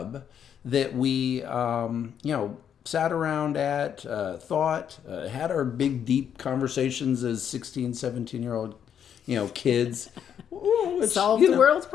that we sat around at, thought, had our big deep conversations as 16, 17-year-old kids. Solve the world's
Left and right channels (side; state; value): right; quieter; 8.7 dB